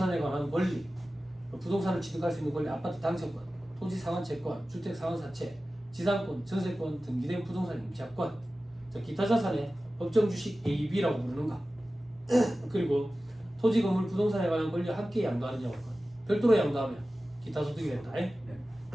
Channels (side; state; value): both; normal; correlation 0.95